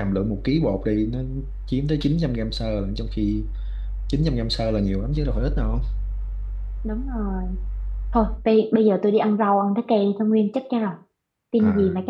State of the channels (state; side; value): identical; both; correlation 1.00